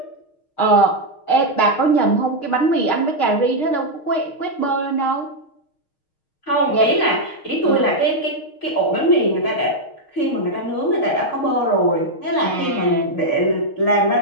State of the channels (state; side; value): late; right; 6.5 ms